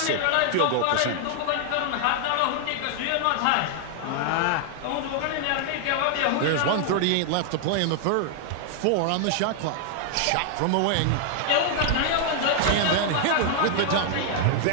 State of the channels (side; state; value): both; different; correlation 0.00